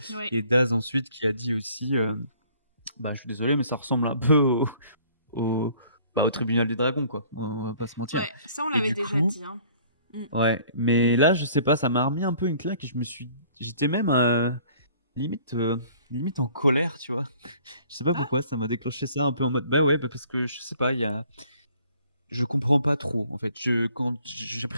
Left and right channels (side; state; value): both; inverted; correlation -0.56